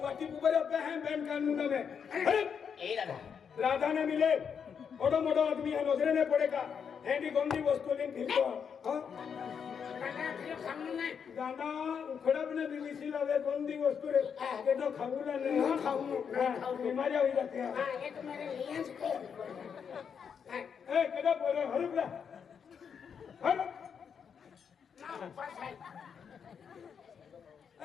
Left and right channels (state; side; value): quieter; right; 7.0 dB